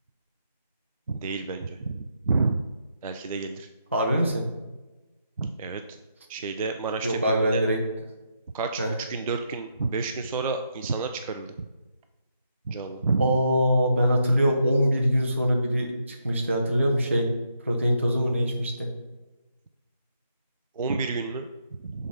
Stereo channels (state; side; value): inverted; both; correlation -0.78